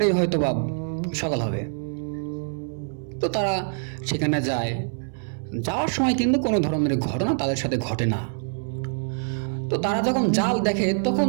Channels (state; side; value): silent; left; 62 dB below the other